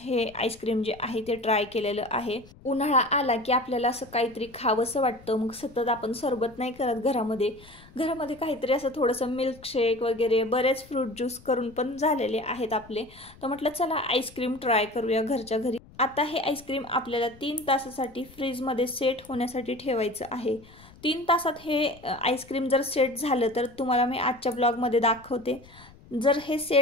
हे आईस्क्रीम जे आहे ते ट्राय केलेलं आहे. उन्हाळा आला की आपल्याला असं काहीतरी खावंसं वाटतं, मग सतत आपण सरबत नाही करत घरामध्ये काहीतरी असं थोडंसं मिल्कशेक वगैरे बरेच फ्रूट ज्यूस करून पण झालेले आहेत आपले. तर म्हटलं चला आईस्क्रीम ट्राय करूया घरच्या घरी. आता हे आईस्क्रीम आपल्याला 3 तासासाठी फ्रीजमध्ये सेट होण्यासाठी ठेवायचं आहे. 3 तासात हे आईस्क्रीम जर सेट झालं तर तुम्हाला मी आजच्या ब्लॉगमध्ये दाखवते. जर हे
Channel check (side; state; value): left; noise; rumble, 23 dB below the sound